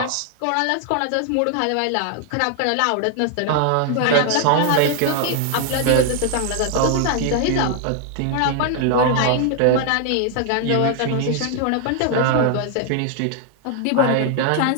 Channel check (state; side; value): different; both; correlation 0.00